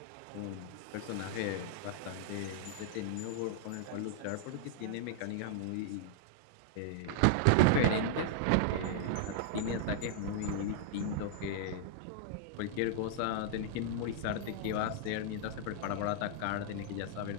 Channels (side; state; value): both; different; correlation -0.01